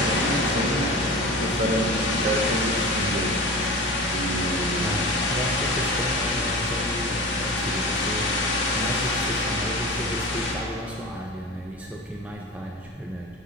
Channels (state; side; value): normal; both; correlation 0.32